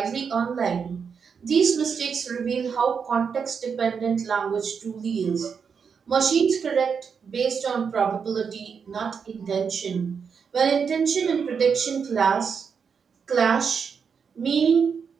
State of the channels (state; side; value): quieter; left; 6.3 dB